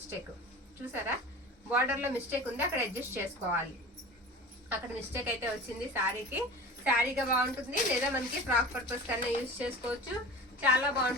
చూసారా, బార్డర్ లో మిస్టేక్ ఉంది, అక్కడ అడ్జస్ట్ చేసుకోవాలి. అక్కడ మిస్టేక్ అయితే వచ్చింది శారీకి. శారీగా బాగుంటుంది, లేదా మనకి ఫ్రాక్ పర్పస్ కన్నా యూజ్ చేసుకోవచ్చు. చాలా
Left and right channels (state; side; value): normal; both; correlation 0.35